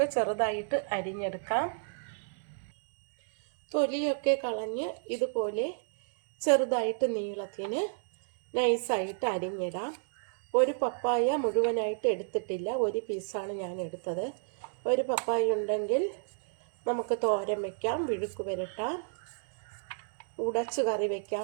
ചെറുതായിട്ട് അരിഞ്ഞെടുക്കാം. തൊലിയൊക്കെ കളഞ്ഞ് ഇതുപോലെ ചെറുതായിട്ട് നീളത്തിന് നൈസായിട്ട് അരിഞ്ഞിടാം. ഒരു പപ്പായ മുഴുവനായിട്ട് എടുത്തിട്ടില്ല, ഒരു പീസാണ് ഞാൻ എടുത്തത്. ഒരു പപ്പായ ഉണ്ടെങ്കിൽ നമുക്ക് തോരൻ വയ്ക്കാം, വിഴുക്ക് പുരട്ടാം, ഉടച്ച് കറി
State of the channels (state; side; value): silent; left; 57 dB below the other